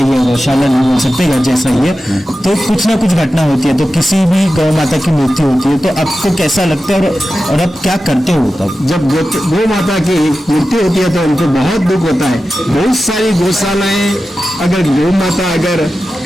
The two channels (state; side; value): normal; both; correlation 0.93